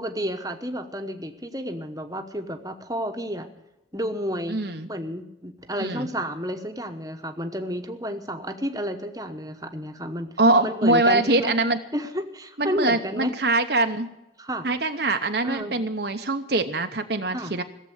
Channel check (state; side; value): normal; both; correlation 0.09